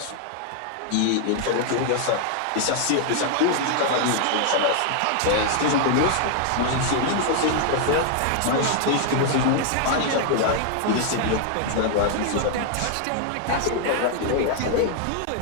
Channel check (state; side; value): different; both; correlation 0.00